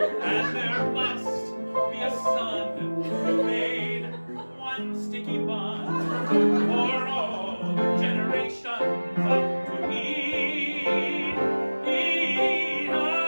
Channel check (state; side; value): inverted; both; correlation -1.00